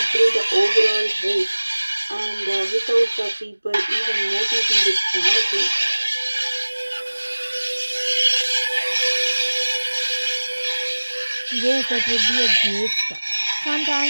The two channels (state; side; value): inverted; both; correlation -1.00